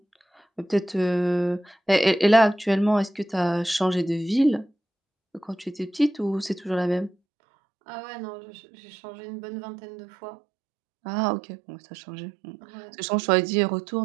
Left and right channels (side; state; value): left; drops out; at 7.2 s